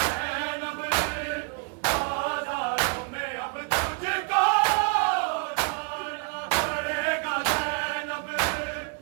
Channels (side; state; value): left; quieter; 36.2 dB